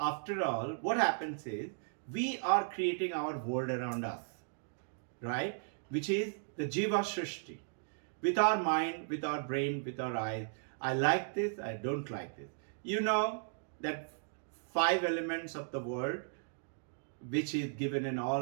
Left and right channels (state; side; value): silent; left; digital silence